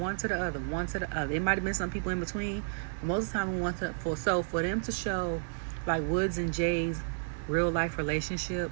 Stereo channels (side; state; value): left; silent; digital silence